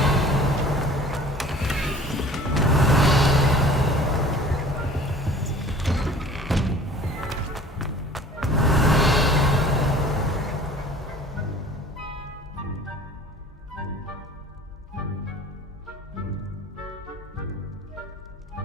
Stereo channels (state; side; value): normal; both; correlation 0.46